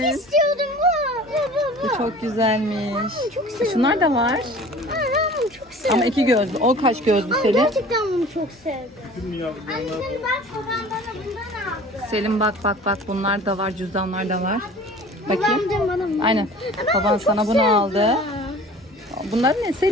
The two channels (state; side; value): normal; both; correlation 0.44